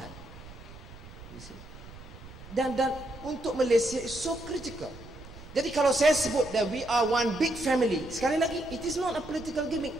You see? Dan untuk Malaysia is so critical. Jadi kalau saya sebut that we are one big family, sekali lagi, it is not a political gimmick.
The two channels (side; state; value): right; noise; rumble, 16 dB below the sound